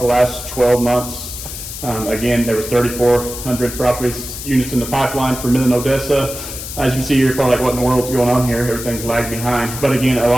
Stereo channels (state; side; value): noise; left; hiss, 9 dB below the sound